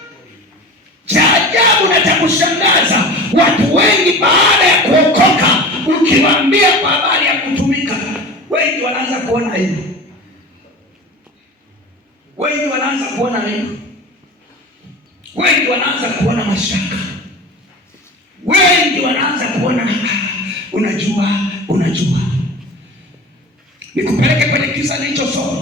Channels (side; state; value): both; normal; correlation 0.35